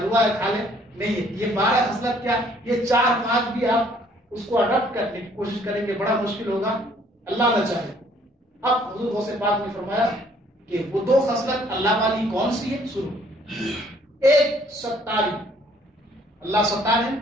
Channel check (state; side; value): normal; both; correlation 0.61